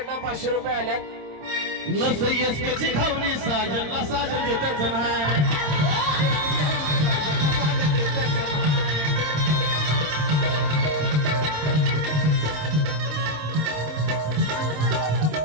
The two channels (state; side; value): late; left; 26 ms